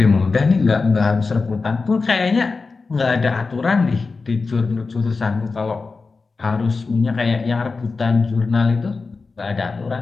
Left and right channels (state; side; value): quieter; right; 4.2 dB